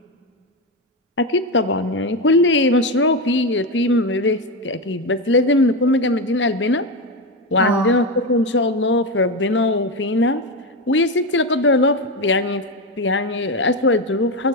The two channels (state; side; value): normal; both; correlation 0.13